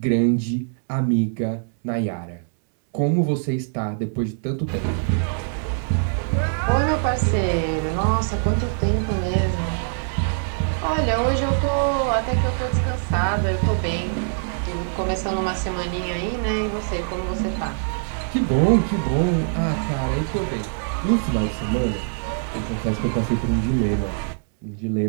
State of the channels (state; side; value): silent; left; 63 dB below the other